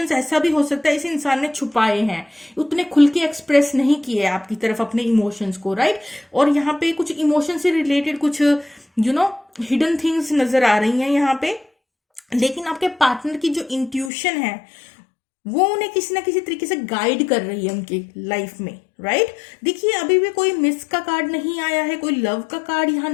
ऐसा भी हो सकता है इस इंसान ने छुपाए हैं, उतने खुल के एक्सप्रेस नहीं किए आपकी तरफ अपने इमोशंस को। राइट, और यहाँ पे कुछ इमोशन से रिलेटेड कुछ हिडन थिंग्स नजर आ रही हैं यहाँ पे। लेकिन आपके पार्टनर की जो इंट्यूशन है वो उन्हें किसी ना किसी तरीके से गाइड कर रही है उनकी लाइफ में, राइट। देखिए अभी भी कोई मिस का कार्ड नहीं आया है, कोई लव का कार्ड यहाँ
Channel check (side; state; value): right; drops out; at 14.1 s